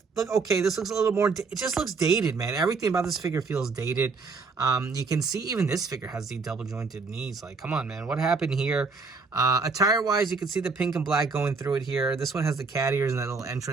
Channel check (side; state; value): left; quieter; 4.5 dB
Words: look okay. This looks a little more, it just looks dated, man. Everything about this figure feels dated. You can see even this figure has the double jointed knees. Like, come on, man, what happened here? Attire wise, you can see the pink and black going through it here. This one has the cat ears and that little